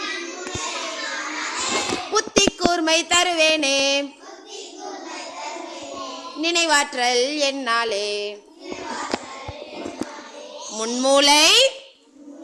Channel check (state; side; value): identical; both; correlation 1.00